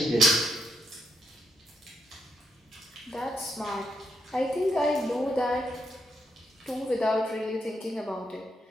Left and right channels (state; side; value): normal; both; correlation 0.79